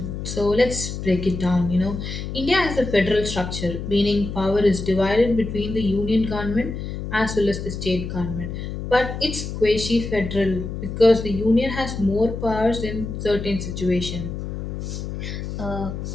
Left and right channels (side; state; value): left; noise; hum, 6 dB below the sound